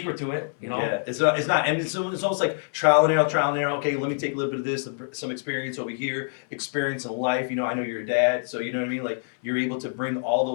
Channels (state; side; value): silent; right; 61 dB below the other